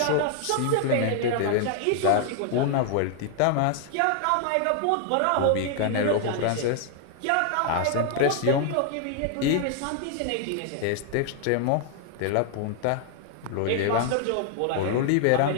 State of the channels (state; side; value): different; both; correlation 0.00